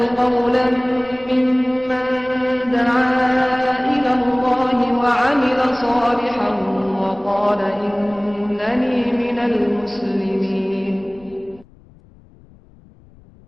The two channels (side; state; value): left; noise; rumble, 26 dB below the sound